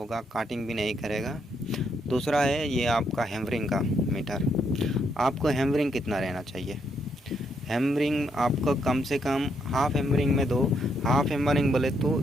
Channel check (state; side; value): normal; both; correlation 0.76